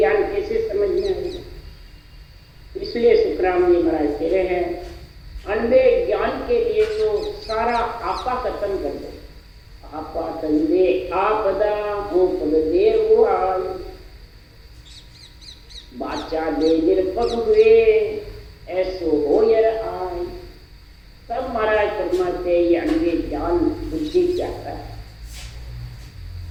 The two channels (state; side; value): identical; both; correlation 1.00